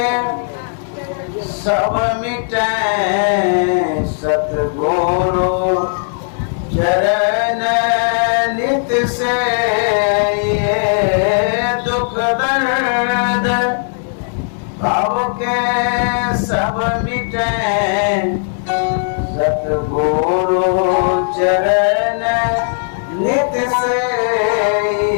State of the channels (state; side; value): silent; right; 68 dB below the other